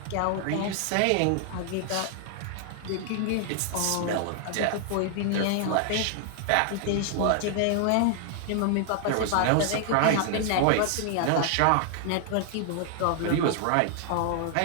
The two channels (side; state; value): both; different; correlation 0.00